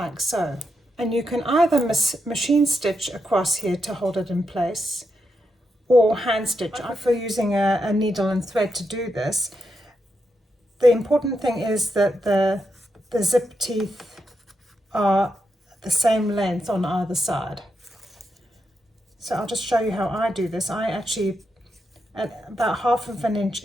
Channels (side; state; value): both; normal; correlation 0.84